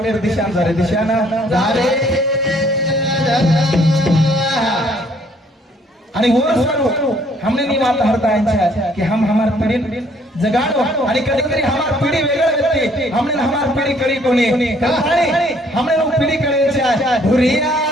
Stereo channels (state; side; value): normal; both; correlation 0.63